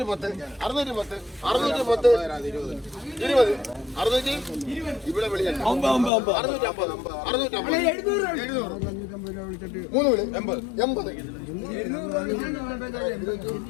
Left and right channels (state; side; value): drops out; right; at 6.1 s